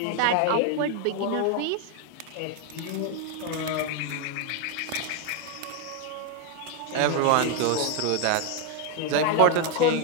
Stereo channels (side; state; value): both; different; correlation 0.01